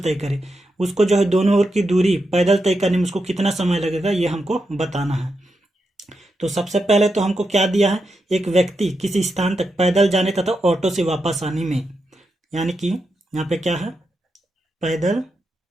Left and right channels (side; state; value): both; normal; correlation 0.86